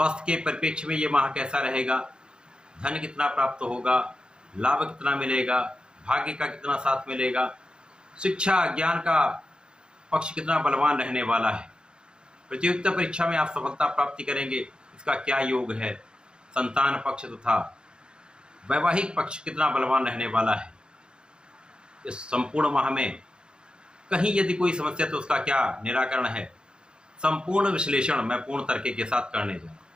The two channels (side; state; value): left; late; 0.050 ms